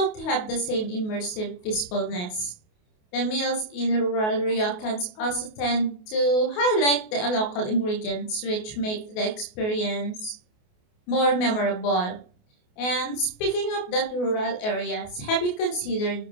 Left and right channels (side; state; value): right; late; 28 ms